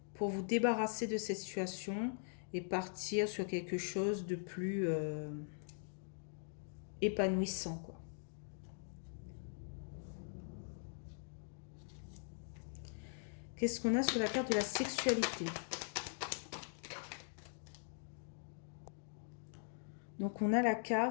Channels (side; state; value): right; silent; digital silence